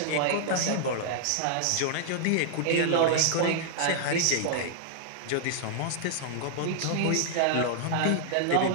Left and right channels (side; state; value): both; different; correlation -0.01